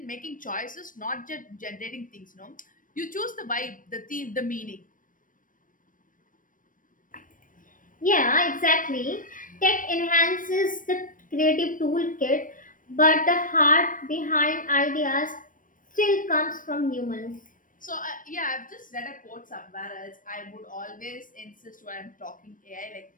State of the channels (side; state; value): right; late; 0.39 ms